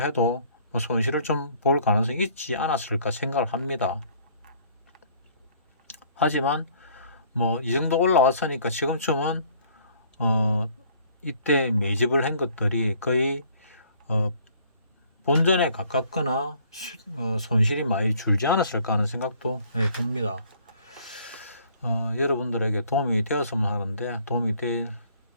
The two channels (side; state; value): both; inverted; correlation -0.58